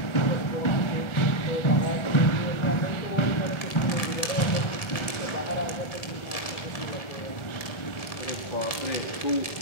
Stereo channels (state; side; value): late; right; 1.7 ms